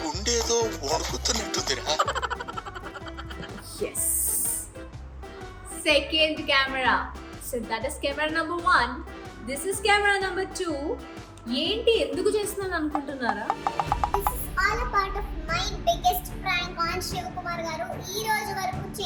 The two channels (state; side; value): identical; both; correlation 1.00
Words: ఉండేదో వణుకుతున్నట్టుందిరా. yes, second camera, so that is camera number 1. This is camera number 2. ఏంటి ఎందుకు చేస్తున్నాను అనుకుంటున్నారా? This is all a part of my biggest prank on Shivakumar గారు. ఈ రోజు వరకు